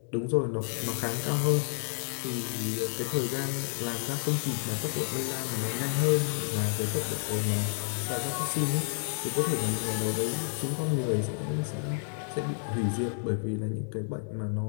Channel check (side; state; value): right; silent; 58 dB below the other